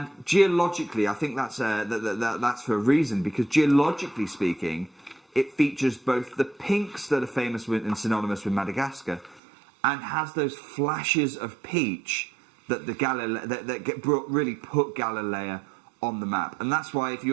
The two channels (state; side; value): drops out; left; at 9.4 s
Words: geologically, I think that's for a reason, because geologically speaking, it features both the pinks that are famous with and synonymous with Madagascar, and has those flashes of peach that really put Galilea on the map. And that's why, if